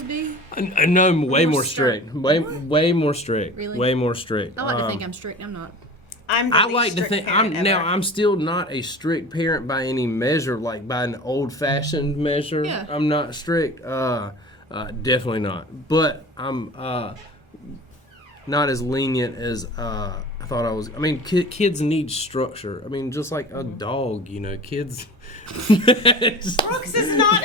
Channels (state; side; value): normal; both; correlation 0.38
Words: be? No, way More more strict. Way more strict. Really? Way more strict. I like to think I'm strict. I'm not. I'm the I least like to strict think parent ever. I'm still not a strict parent by any measure, like by an old-fashioned measure. Yeah. I'm not strict. Definitely not. But I'm not as lenient as I thought I was. I mean, kids need structure. I mean, just like a dog, you know, kids. Brooks is not